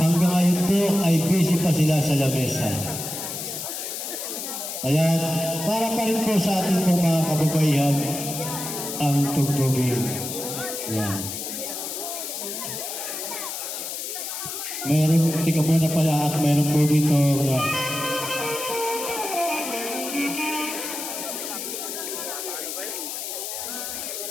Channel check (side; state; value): left; noise; hiss, 6 dB below the sound